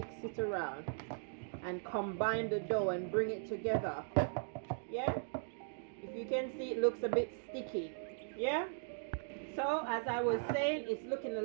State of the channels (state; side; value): silent; left; digital silence